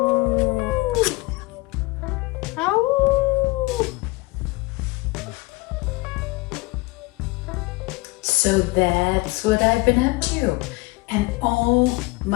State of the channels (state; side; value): quieter; right; 23.5 dB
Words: Ow. So that's what I've been up to. And oh